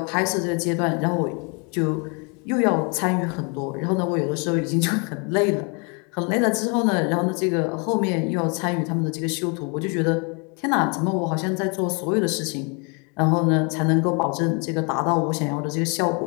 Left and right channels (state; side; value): quieter; right; 34.1 dB